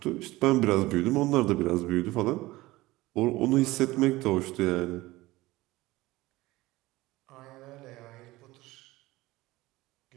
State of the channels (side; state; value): left; quieter; 19.1 dB